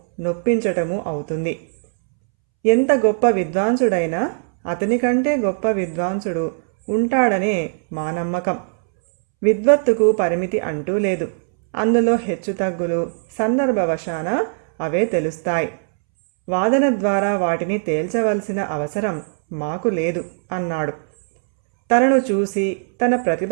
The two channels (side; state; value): left; silent; 66 dB below the other